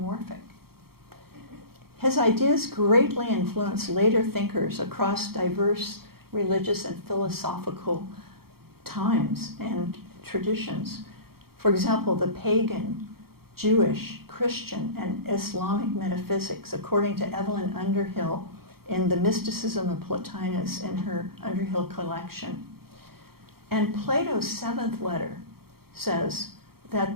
His ideas greatly influenced later thinkers across diverse religious and philosophical times and traditions. For example, the pagan, Jewish, Christian, and Islamic metaphysics, according to Evelyn Underhill in The Mysticism of Plotinus in her Underhill collection. And Plato's 7th letter says that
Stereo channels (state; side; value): late; left; 0.95 ms